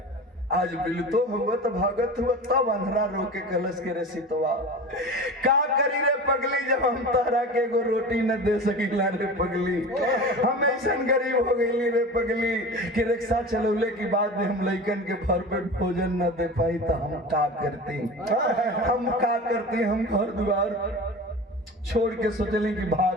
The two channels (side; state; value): both; normal; correlation 0.32